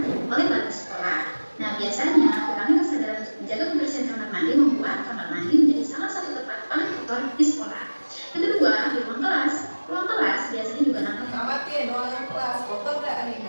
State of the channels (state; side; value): inverted; both; correlation -1.00